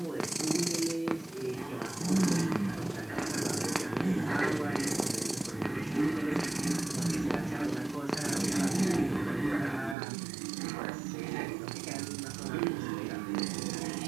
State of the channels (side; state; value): left; drops out; at 10.0 s